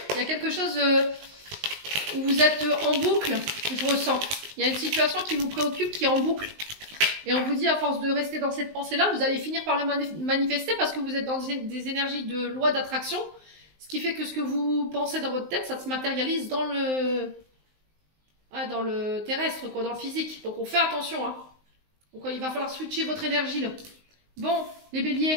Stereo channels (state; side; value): late; left; 19 ms